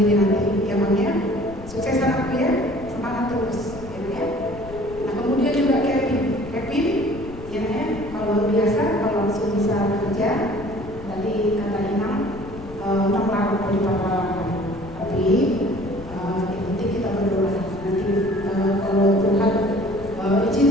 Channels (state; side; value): noise; left; rumble, 14 dB below the sound